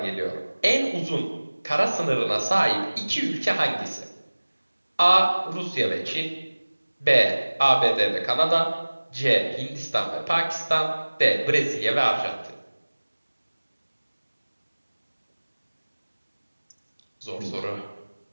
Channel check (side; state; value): both; inverted; correlation -1.00